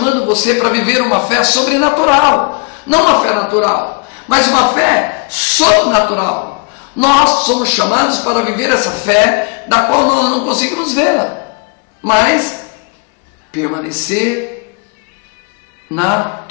você para viver uma fé sobrenatural, não uma fé natural, mas uma fé sobrenatural. Nós somos chamados para viver essa fé, da qual nós não conseguimos vê-la, mas permanecer na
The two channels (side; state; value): right; quieter; 33.1 dB